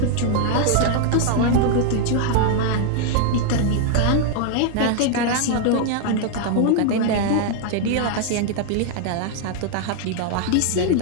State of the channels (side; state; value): both; different; correlation 0.00